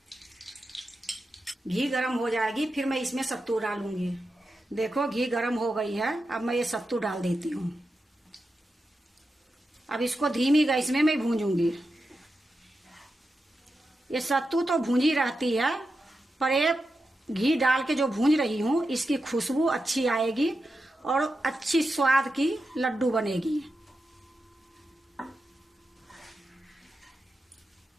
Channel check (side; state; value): both; normal; correlation 0.89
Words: घी गरम हो जाएगी फिर मैं इसमें सत्तू डालूंगी। देखो घी गरम हो गई है, अब मैं ये सत्तू डाल देती हूँ। अब इसको धीमी गैस में मैं भूंजूंगी। ये सत्तू तो भूंजी रहती है, पर ये घी डाल के जो भूंज रही हूँ इसकी खुशबू अच्छी आएगी और अच्छी स्वाद की लड्डू बनेगी।